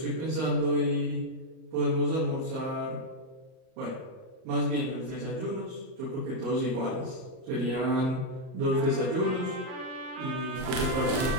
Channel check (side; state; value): left; late; 38 ms